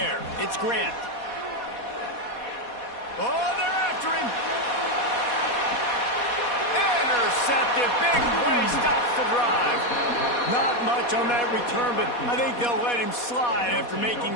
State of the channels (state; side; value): late; right; 4.2 ms